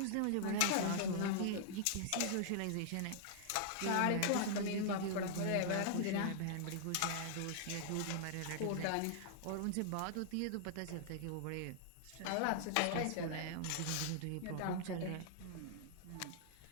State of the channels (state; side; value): different; both; correlation -0.01